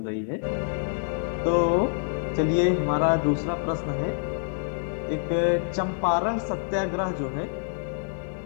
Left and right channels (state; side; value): silent; right; digital silence